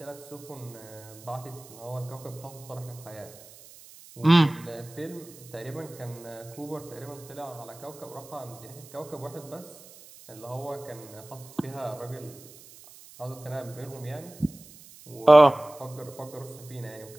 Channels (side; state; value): right; noise; hiss, 20 dB below the sound